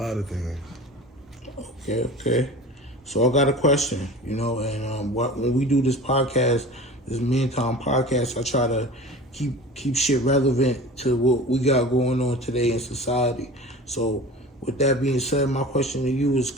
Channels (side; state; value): both; normal; correlation 0.37